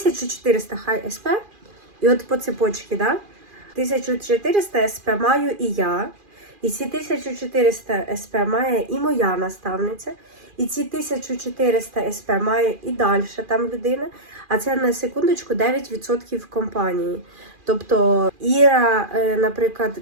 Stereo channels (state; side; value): late; left; 2.4 ms